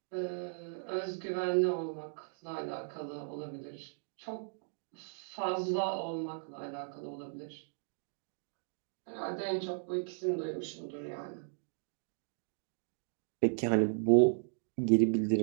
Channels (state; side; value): silent; left; digital silence